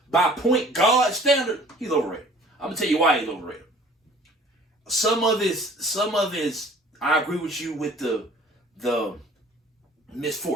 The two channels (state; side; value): normal; both; correlation 0.50